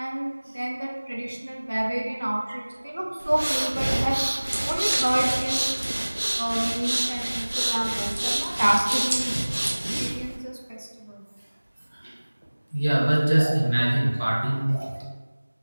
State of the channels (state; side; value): inverted; both; correlation -1.00